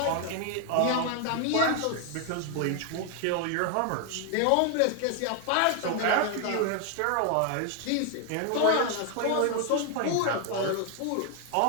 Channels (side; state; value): both; different; correlation 0.00